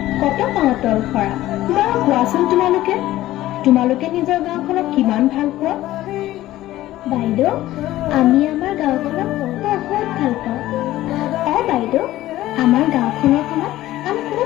কত পাতল সৰা। বাৰু কোৱাচোন তোমালোকে নিজৰ গাঁওখনক কিমান ভাল পোৱা? বাইদেউ, আমি আমাৰ গাঁওখনক বহুত ভাল পাওঁ। বাইদেউ, আমাৰ গাঁওখনৰ খনত আমি কোনো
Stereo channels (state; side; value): quieter; right; 15.3 dB